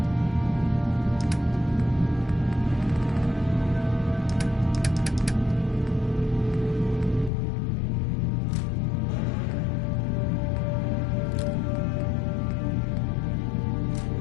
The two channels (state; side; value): drops out; right; at 7.3 s